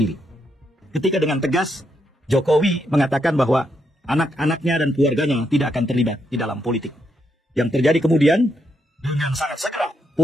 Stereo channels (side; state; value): both; normal; correlation 0.79